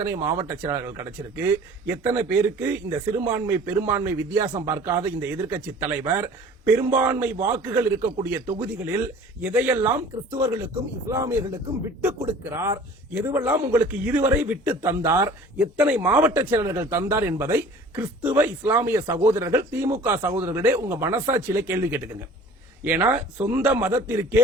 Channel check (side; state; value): both; normal; correlation 0.46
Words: மாவட்ட செயலாளர்கள் கிடைச்சிருக்கு, எத்தனை பேருக்கு இந்த சிறுபான்மை பெரும்பான்மை வித்தியாசம் பார்க்காத இந்த எதிர்க்கட்சி தலைவர் பெரும்பான்மை வாக்குகள் இருக்கக்கூடிய தொகுதிகளில் எதையெல்லாம் கிறிஸ்தவர்களுக்கும் இஸ்லாமியர்களுக்கும் விட்டுக் கொடுக்கிறார், எதுவெல்லாம் உங்களுக்கு இதுவரை விட்டு தந்தார், எத்தனை மாவட்ட செயலாளர்கள் தந்தார் என்பதை கிறிஸ்துவ இஸ்லாமிய சகோதரர்கள் திமுக சகோதரர்களே உங்க மனசாட்சியில கேள்வி கேட்டுக்கங்க. ஏன்னா சொந்த மதத்திற்கே